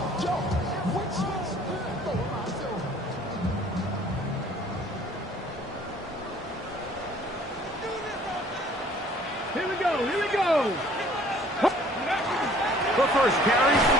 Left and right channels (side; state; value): both; normal; correlation 0.55